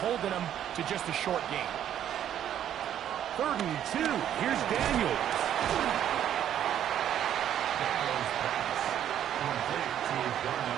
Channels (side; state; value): left; quieter; 10.4 dB